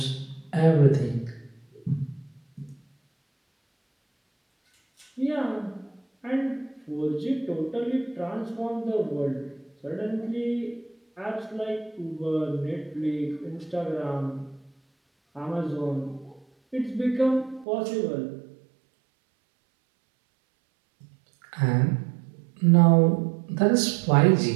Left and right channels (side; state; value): left; drops out; at 17.7 s